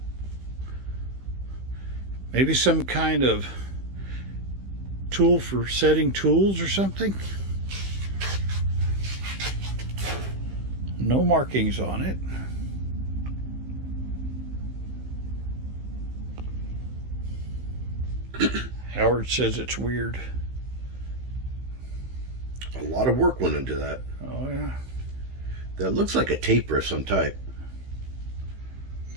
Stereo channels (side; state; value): left; late; 15 ms